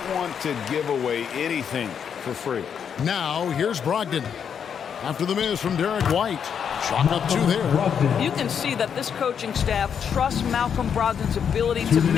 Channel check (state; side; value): quieter; right; 7.6 dB